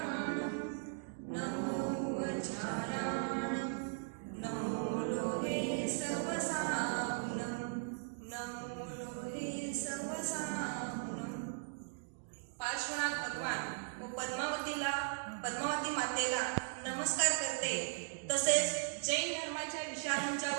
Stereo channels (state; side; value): silent; left; digital silence